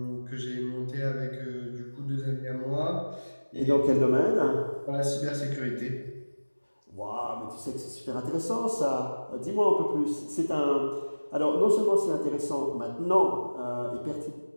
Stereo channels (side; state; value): both; inverted; correlation -1.00